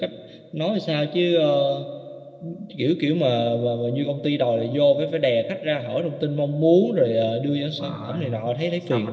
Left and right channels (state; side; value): identical; both; correlation 1.00